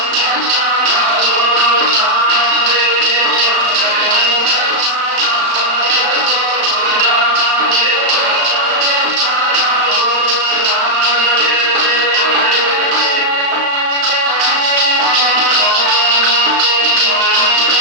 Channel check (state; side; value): late; left; 35 ms